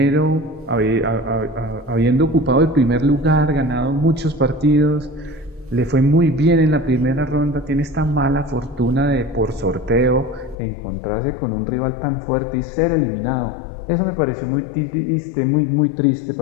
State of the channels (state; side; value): drops out; right; at 10.6 s